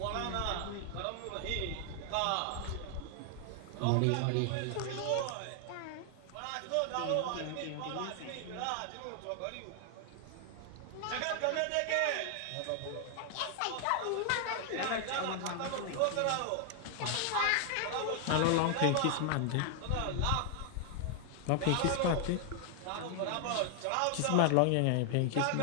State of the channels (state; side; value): different; both; correlation 0.00